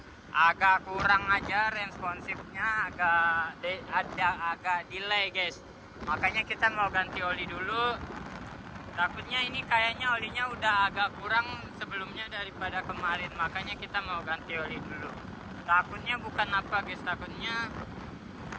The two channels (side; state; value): both; identical; correlation 1.00